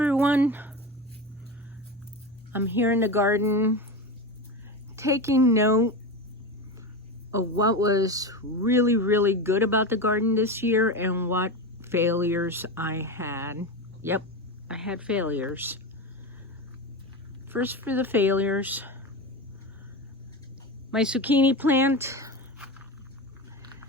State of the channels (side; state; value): both; normal; correlation 0.21